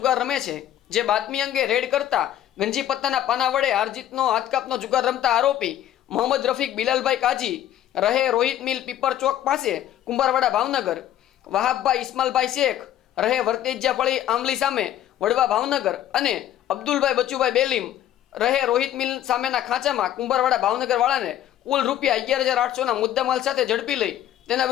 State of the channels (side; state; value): right; quieter; 11.8 dB